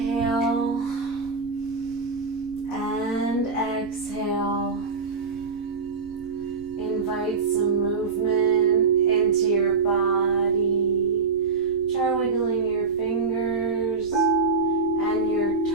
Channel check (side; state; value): left; quieter; 4.6 dB